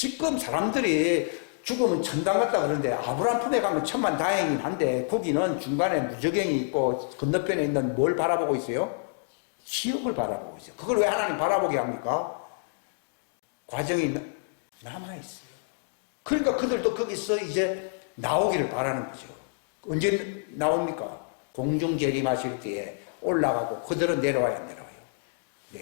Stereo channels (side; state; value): right; silent; digital silence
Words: 사람들이 죽으면 천당 갔다 그러는데 아브라함 품에 가면 천만 다행이긴 한데 거기는 중간에 무저갱이 있고 건너편에 있는 뭘 바라보고 있어요? 지옥을 바라보고 있어요. 그걸 왜 하나님 바라보게 합니까? 과정이 남아있어요. 그러니까 그들도 거기서 이제 나오기를 바라는 거죠. 언제 나옵니까? 공중 재림하실 때에 올라가고 그들은 내려와야 안 내려와요.